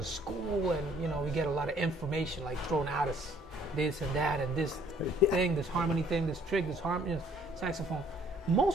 school, and we get a lot of information like thrown at us, this and that, and this thing, this harmony thing, this trick, this harmony, saxophone.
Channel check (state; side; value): normal; both; correlation 0.61